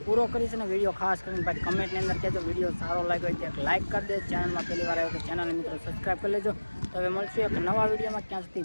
પૂરો કરીશું ને વિડીયો ખાસ કરીને ભાઈ કમેન્ટની અંદર કહેજો વિડીયો સારો લાગ્યો હોય તો લાઇક કરી દે. ચેનલમાં પહેલી વાર આવ્યો તો ચેનલને મિત્રો સબસ્ક્રાઈબ કરી લેજો. તો હવે મળશું એક નવા વિડીયોમાં, ક્યાં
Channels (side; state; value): both; inverted; correlation -1.00